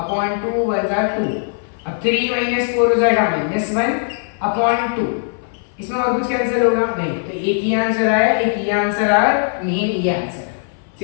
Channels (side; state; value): right; silent; 58 dB below the other